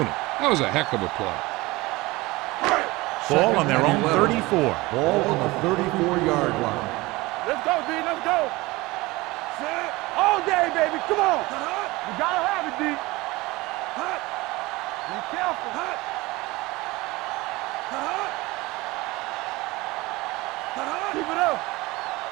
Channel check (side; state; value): left; quieter; 21.4 dB